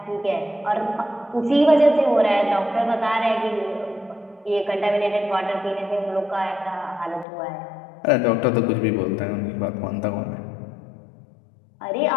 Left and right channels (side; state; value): right; drops out; at 7.2 s